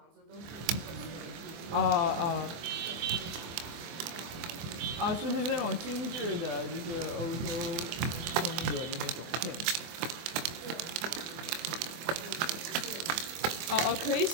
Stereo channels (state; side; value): late; left; 24 ms